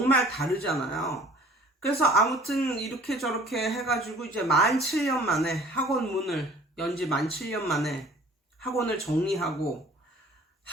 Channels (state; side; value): normal; both; correlation 0.50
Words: 다르잖아요. 그래서 아무튼 이렇게 저렇게 해가지고 이제 17년 만에 학원 문을 연지 17년 만에 학원을 정리하고,